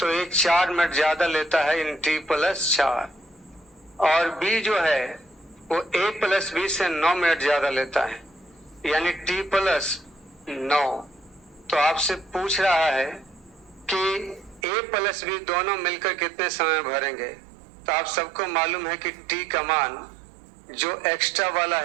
ये 4 मिनट ज्यादा लेता है इन टी प्लस 4, और बी जो है वो ए प्लस बी से 9 मिनट ज्यादा लेता है, यानी टी प्लस 9। तो आपसे पूछ रहा है कि ए प्लस बी दोनों मिलकर कितने समय भरेंगे। तो आप सबको मालूम है कि टी का मान जो एक्स्ट्रा वाला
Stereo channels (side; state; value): left; drops out; at 14.6 s